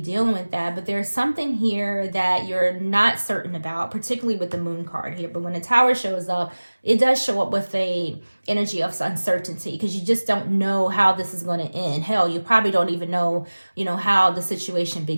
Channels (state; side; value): inverted; both; correlation -1.00